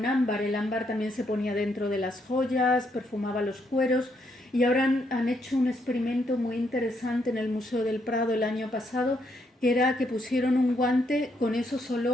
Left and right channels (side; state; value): both; normal; correlation 0.75